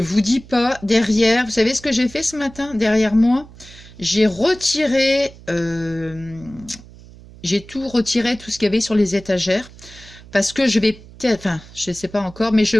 dis pas, derrière... Vous savez ce que j'ai fait ce matin? Derrière moi, j'ai retiré... j'ai tout retiré, tout ce qu'il y avait sur les étagères. Parce que je vais peut-être... Enfin, je ne sais pas encore, mais je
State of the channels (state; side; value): noise; right; hum, 20 dB below the sound